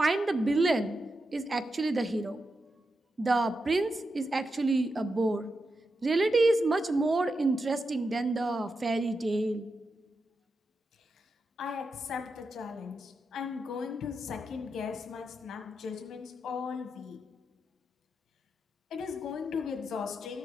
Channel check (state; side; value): normal; both; correlation 0.87